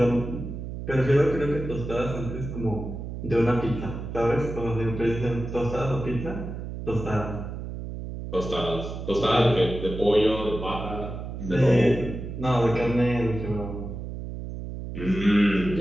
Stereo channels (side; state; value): right; noise; hum, 7 dB below the sound